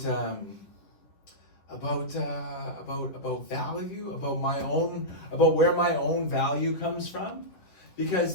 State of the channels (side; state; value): right; late; 10 ms